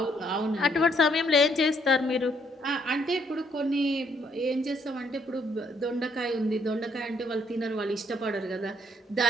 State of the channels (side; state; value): both; normal; correlation 0.69